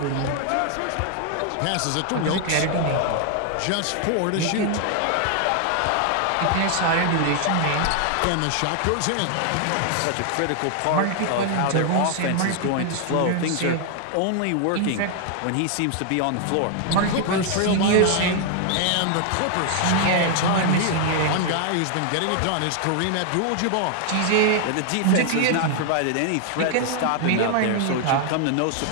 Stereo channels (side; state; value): both; different; correlation 0.00